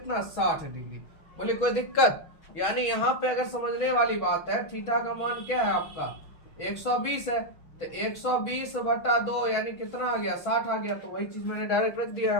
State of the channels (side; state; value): right; late; 6.2 ms